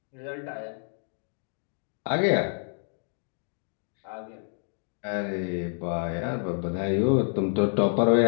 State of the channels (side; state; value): right; silent; 56 dB below the other